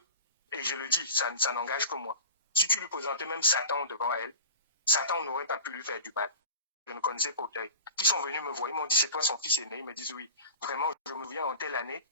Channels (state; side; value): inverted; both; correlation -0.34